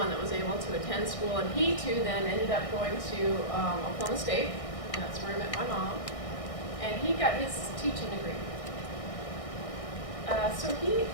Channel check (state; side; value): late; right; 1.6 ms